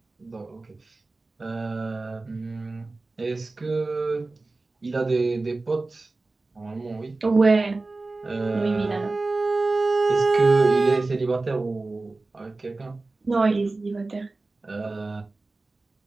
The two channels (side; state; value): left; quieter; 3.4 dB